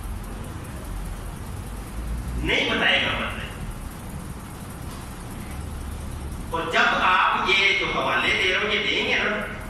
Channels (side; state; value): both; identical; correlation 1.00